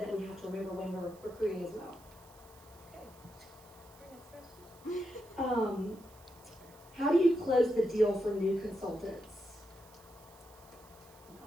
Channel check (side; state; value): right; noise; hiss, 24 dB below the sound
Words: we have to remember when we're recruiting as well. How do you close the deal for new consultants?